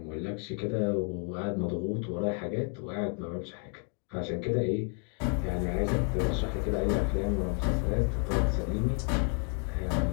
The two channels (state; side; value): quieter; right; 37.1 dB